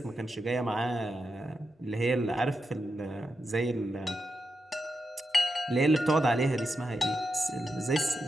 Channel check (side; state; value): both; normal; correlation 0.87